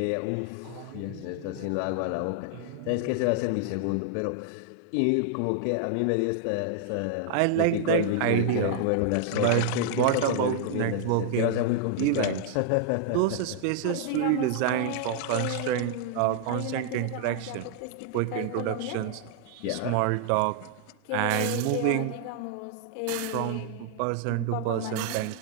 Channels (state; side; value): different; both; correlation -0.01